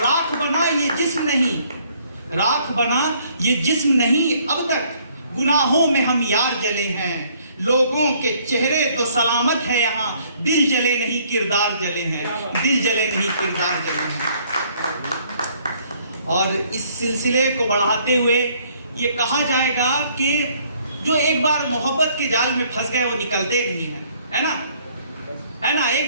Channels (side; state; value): both; inverted; correlation -0.63